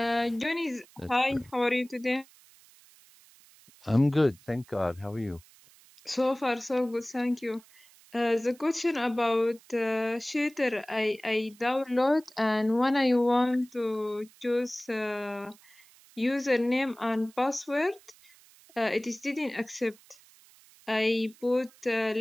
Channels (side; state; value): right; noise; hiss, 26 dB below the sound